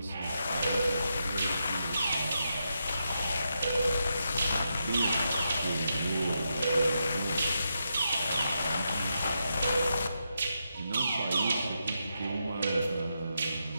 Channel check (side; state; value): both; inverted; correlation -0.84